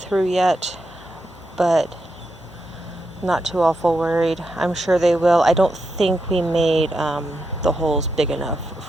yet, but not too awful worried. I'm sure they will. I don't think we made the holes big enough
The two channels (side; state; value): both; normal; correlation 0.85